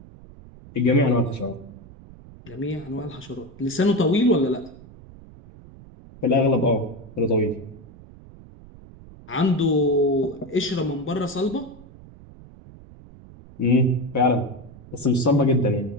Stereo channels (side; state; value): right; noise; rumble, 20 dB below the sound